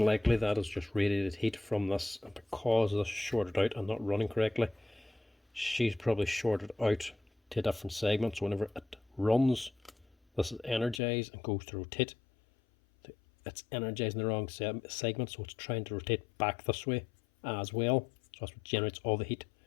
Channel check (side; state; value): right; drops out; at 11.0 s